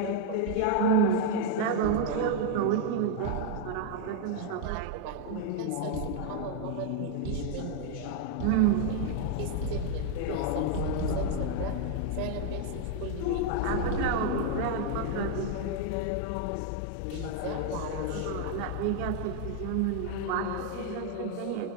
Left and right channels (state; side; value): different; both; correlation 0.00